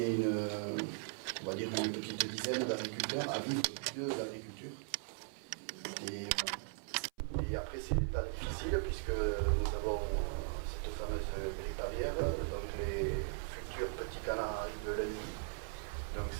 on va dire une petite dizaine d'agriculteurs à vivre de l'agriculture. Et après, c'est des temps difficiles puisque nous avons cette fameuse grippe aviaire, donc les futurs petits canards arrivent lundi. Donc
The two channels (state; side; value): silent; left; 52 dB below the other